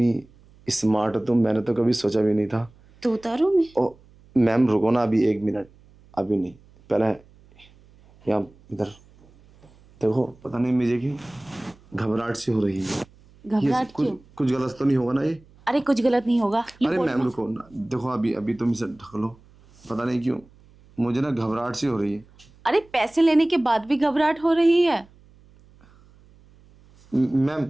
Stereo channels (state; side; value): noise; right; hum, 27 dB below the sound